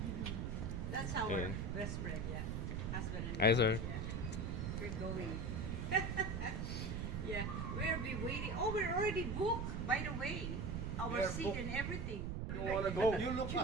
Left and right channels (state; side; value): noise; right; rumble, 2 dB below the sound